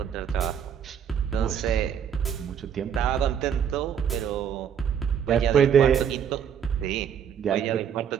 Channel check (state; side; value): quieter; left; 8.3 dB